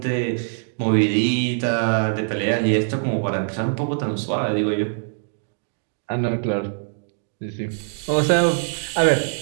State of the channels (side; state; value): left; silent; digital silence